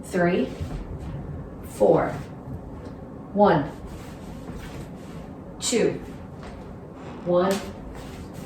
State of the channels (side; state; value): both; identical; correlation 1.00